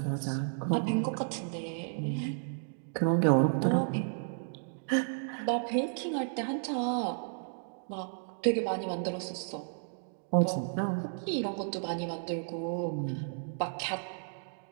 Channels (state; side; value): silent; left; digital silence